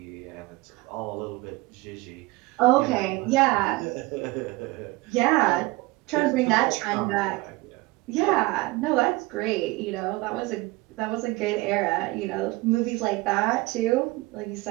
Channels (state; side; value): quieter; left; 22.1 dB